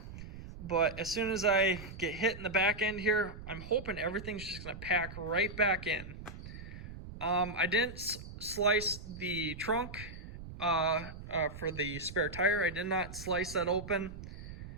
but as soon as I get hit in the back end here, I'm hoping everything's just gonna pack right back in. I didn't slice the trunk for the spare tire. I did not slice that open.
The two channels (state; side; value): noise; right; rumble, 12 dB below the sound